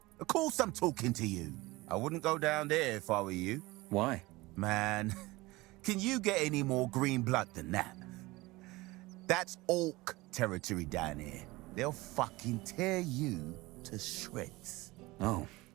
Of course I'm talking to you. I wouldn't go down there if I were you. Why? Man, can you get any more green blood than that? That's orc territory down here. They'll fucking tear you to shreds. Oh.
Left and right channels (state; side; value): quieter; left; 21.0 dB